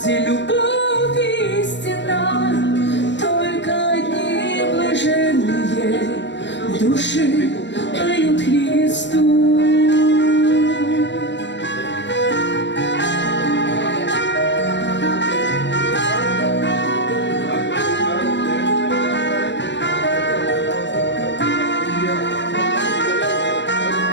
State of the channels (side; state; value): right; late; 0.52 ms